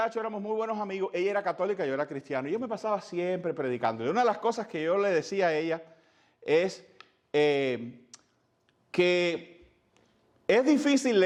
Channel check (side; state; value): both; identical; correlation 1.00